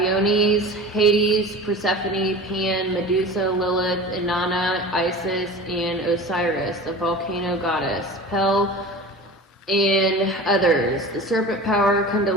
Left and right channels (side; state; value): both; normal; correlation 0.36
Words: Hades, Persephone, Pan, Medusa, Lilith, Inanna, Isis, and Osiris, the volcano goddess, Pel, and others, the serpent power,